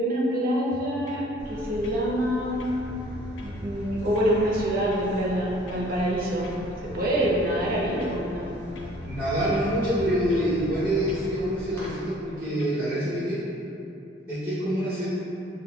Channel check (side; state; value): both; normal; correlation 0.54